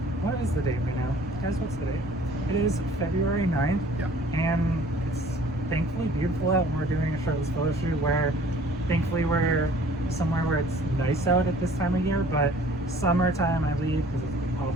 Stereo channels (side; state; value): both; normal; correlation 0.52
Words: what is the date right now, guys? What's the date? It is February 9th. Yeah. And it's thankfully beautiful out. We're doing a shirtless photo shoot where, thankfully, we're somewhere where it's nice out at this time of year. But summertime, I leave because it's